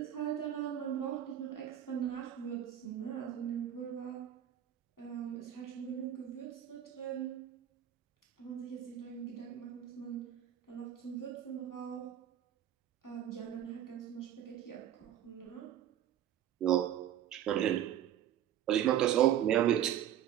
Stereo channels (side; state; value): left; quieter; 10.9 dB